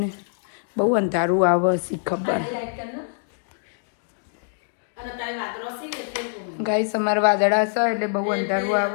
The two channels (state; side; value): silent; right; digital silence